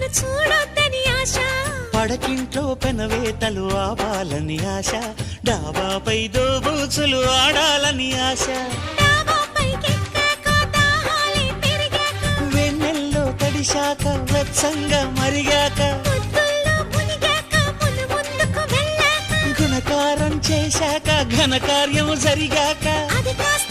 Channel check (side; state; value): both; identical; correlation 1.00